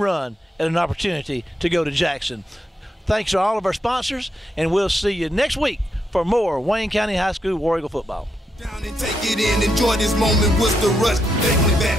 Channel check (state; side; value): normal; both; correlation 0.81